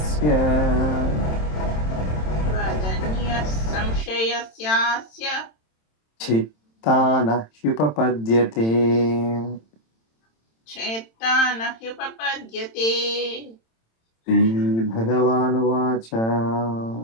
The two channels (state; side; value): late; right; 27 ms